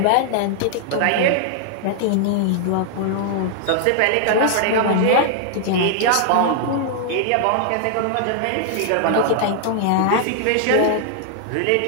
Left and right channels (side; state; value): both; different; correlation 0.00